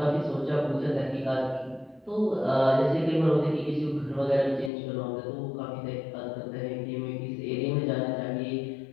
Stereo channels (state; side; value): drops out; right; at 4.7 s